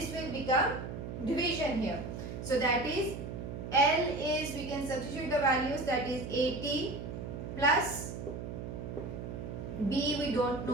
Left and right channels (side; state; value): right; noise; hum, 7 dB below the sound